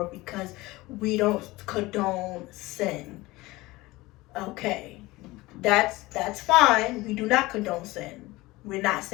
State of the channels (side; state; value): right; quieter; 20.4 dB